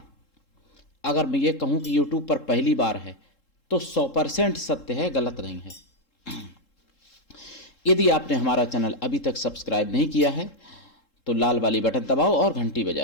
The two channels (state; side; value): late; right; 3.7 ms